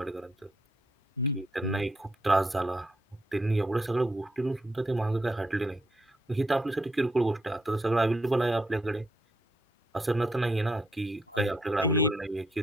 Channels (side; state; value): both; normal; correlation 0.76